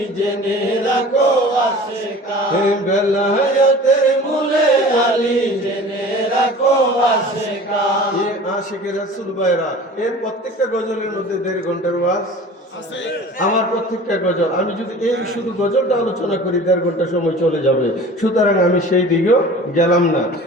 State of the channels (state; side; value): normal; both; correlation 0.41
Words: জেনে রাখো আশিকান, বেলায়েতের মূলে আলী জেনে রাখো আশিকান। আশিকের রাসূল ভাইরা, এর প্রত্যেকটা গজলের মধ্যে 1.5 ঘন্টার ওয়াজ। আমার প্রত্যেকটা গজল, আমি যদি এই শুধু গজলটা আলোচনা করি 1.5 ঘন্টা সময় চলে যাবে। সুতরাং আমি সেই দিকেও গেলাম না।